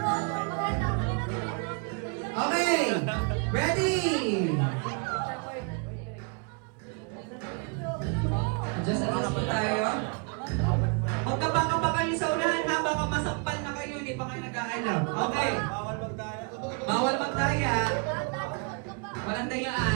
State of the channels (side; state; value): left; quieter; 35.0 dB